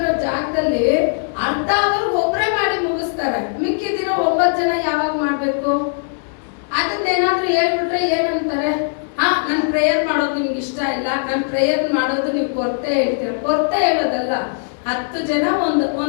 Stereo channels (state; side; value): silent; right; digital silence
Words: ಜಾಗದಲ್ಲಿ ಅರ್ಧ ಅವರ್ ಒಬ್ಬರೇ ಮಾಡಿ ಮುಗಿಸ್ತಾರೆ. ಮಿಕ್ಕಿದಿರೋ 9 ಜನ ಯಾವಾಗ ಮಾಡ್ಬೇಕು? ಅದನ್ನೇನಾದ್ರೂ ಹೇಳ್ಬಿಟ್ರೆ ಏನಂತಾರೆ, ನನ್ ಪ್ರೇಯರ್ ಮಾಡೋದು ನಿಮ್ಗೆ ಇಷ್ಟ ಇಲ್ಲ, ನನ್ ಪ್ರೇಯರ್ ಮಾಡೋದು ನೀವು ಕೊರತೆ ಹೇಳ್ತೀರ. ಕೊರತೆ ಹೇಳೋದಲ್ಲ. 10 ಜನ